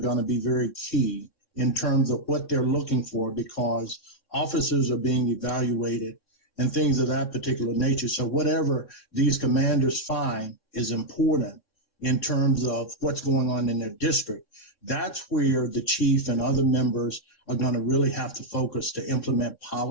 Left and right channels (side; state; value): right; late; 3.6 ms